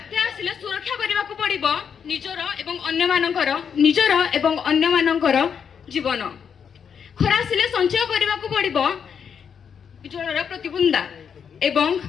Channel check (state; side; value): quieter; right; 7.2 dB